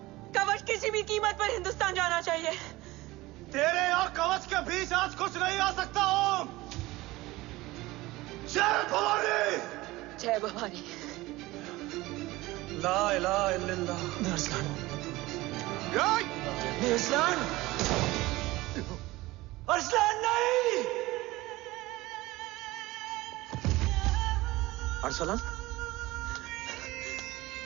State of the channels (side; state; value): left; quieter; 19.4 dB